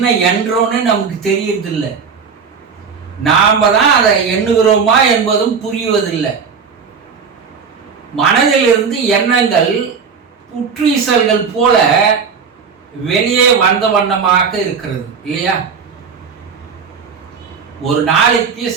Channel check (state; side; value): quieter; left; 5.9 dB